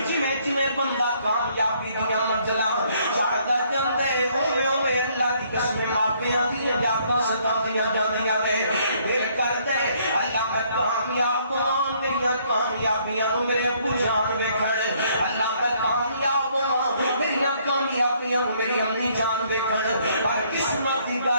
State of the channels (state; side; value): inverted; both; correlation -0.66